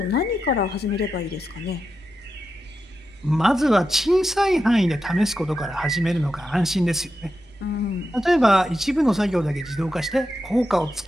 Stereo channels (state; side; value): normal; both; correlation 0.88